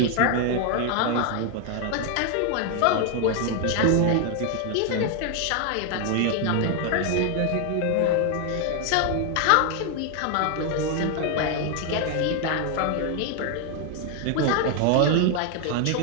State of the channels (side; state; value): both; different; correlation 0.00